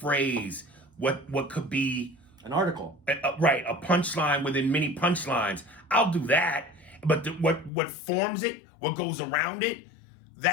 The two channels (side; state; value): right; drops out; at 7.7 s